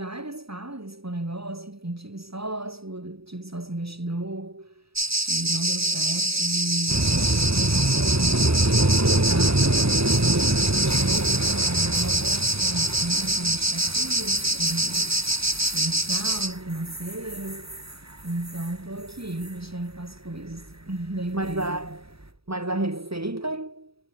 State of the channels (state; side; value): late; left; 0.77 ms